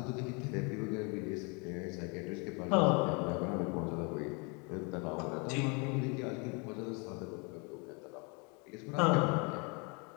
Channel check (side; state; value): right; quieter; 32.6 dB